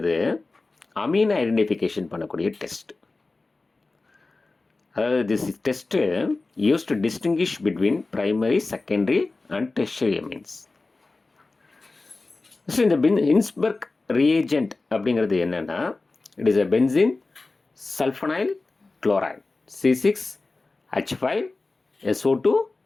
amine identification பண்ணக்கூடிய test. அதாவது this test use to distinguish between primary, secondary and tertiary amines. So இந்த Hinsberg reagent அப்படிங்கிறது என்னென்னா, it is a benzene sulphonyl chloride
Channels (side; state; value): right; quieter; 3.5 dB